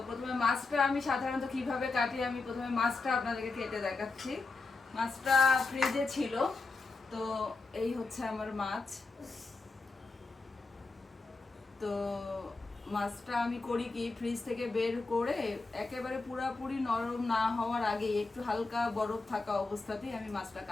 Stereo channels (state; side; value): quieter; right; 3.8 dB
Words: প্রথমে মাছটা আমি সাধারণত কিভাবে কাটি, আমি প্রথমে মাছটা আপনাদেরকে কেটে দেখাচ্ছি। মাছটা ফ্রিজে ছিল, তো এই হচ্ছে আমার মাছ। তো মাছটা আমি করি কি, ফ্রিজ থেকে বের করে একেবারে পুরাপুরি নরম না হওয়ার আগে একটু হালকা বরফ থাকা অবস্থাতেই আমি মাছটা